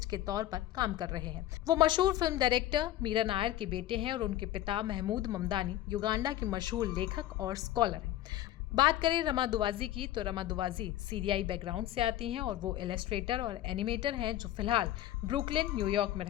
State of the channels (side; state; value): right; quieter; 13.6 dB